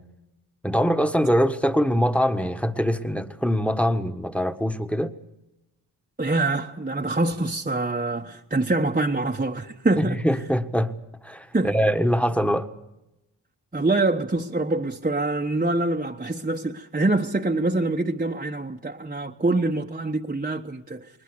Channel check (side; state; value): both; normal; correlation 0.71